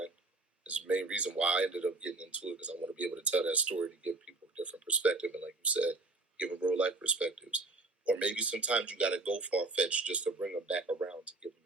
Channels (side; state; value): left; quieter; 3.2 dB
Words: Is the main reason why I ended up getting into it, because I want to be able to tell that story to give people a different perspective. And like you said, give them real life perspectives. Or maybe sometimes you got to go far fetched just to bring them back around to give them